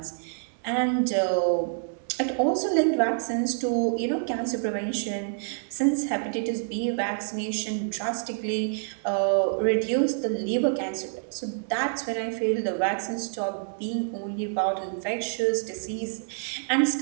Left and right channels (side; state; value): left; silent; digital silence